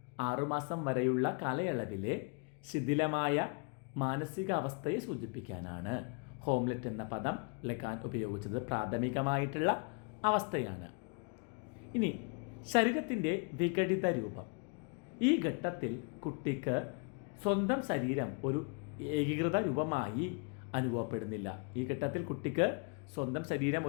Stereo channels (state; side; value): quieter; right; 34.8 dB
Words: 6 മാസം വരെയുള്ള കാലയളവിലെ ശിഥിലമായ മാനസിക അവസ്ഥയെ സൂചിപ്പിക്കാനാണ് ഹോംലെറ്റ് എന്ന പദം ലെഗാൻ ഉപയോഗിച്ചത്. പ്രാഥമികമായിട്ടുള്ള അവസ്ഥയാണ്. ഇനി ശരീരത്തിൻ്റെ വിഘടിത രൂപം. ഈ ഘട്ടത്തിൽ കുട്ടിക്ക് സ്വന്തം ശരീരം ഒരു ഏകീകൃത രൂപമായി അനുഭവപ്പെടുന്നില്ല. ഈ ഘട്ടത്തിൽ കുട്ടിക്ക് സ്വന്തം ശരീരം